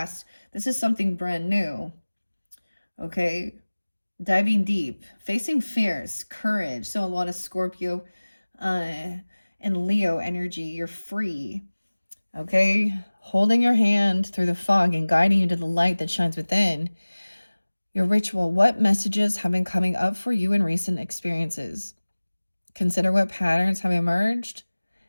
This is something brand new, okay? Diving deep, facing fears, courage. So a lot of Scorpio and Leo energy. You're free, okay? Holding your hand through the fog and guiding you to the light that shines within. Your ritual. What messages have been coming up for you in recent experiences? Consider what patterns have emerged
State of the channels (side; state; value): both; inverted; correlation -1.00